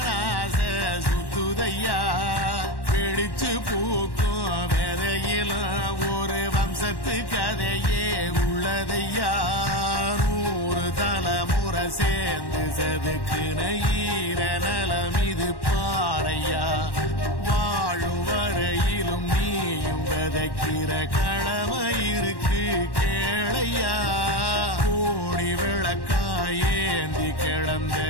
சுத்துதையா பிடிச்சு பூக்கும் விதையிலும் ஒரு வம்சத்து கதையே உள்ளதையா 100 தலைமுறை சேர்ந்து செதுக்குன ஈர நலம் இது பாறையா வாழும் வரையிலும் நீயும் விதைக்கிற கடமை இருக்கு கேளையா கோடி விளக்காயேந்தி கிடந்த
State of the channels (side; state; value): right; late; 1.1 ms